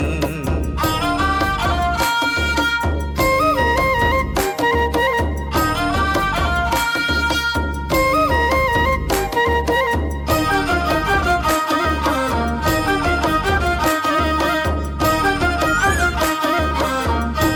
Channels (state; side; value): identical; both; correlation 1.00